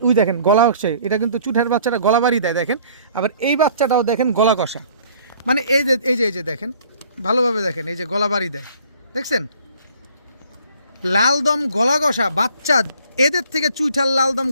ওই দেখেন গলা হচ্ছে, এটা কিন্তু চুইঠাল বাচ্চাটা গলা বাড়ি দেয় দেখেন। আবার এই বাচ্চাটাও দেখেন গলা কষা, মানে এই যে দেখেন ভালোভাবে দেখেন, এই যে গলা বাড়ি দেয় দেখছেন, লালদম গলা কষা বাচ্চা। এদের থেকে চুইঠাল লালদম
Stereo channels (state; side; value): inverted; both; correlation -0.56